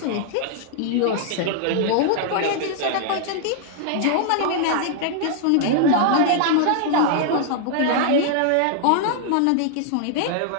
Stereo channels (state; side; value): different; both; correlation -0.01